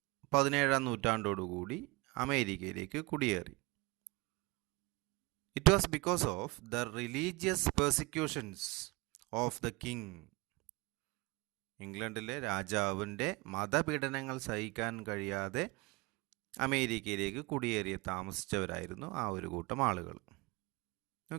17ാം നൂറ്റാണ്ടോടുകൂടി അമേരിക്കയിലേക്ക് കുടിയേറി. It was because of the religious persecutions of the king. ഇംഗ്ലണ്ടിലെ രാജാവിൻ്റെ മതപീഡനങ്ങൾ സഹിക്കാൻ കഴിയാതെ അമേരിക്കയിലേക്ക് കുടിയേറി താമസിച്ചവരായിരുന്നു ആ ഒരു കൂട്ടം ആളുകൾ.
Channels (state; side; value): quieter; left; 25.0 dB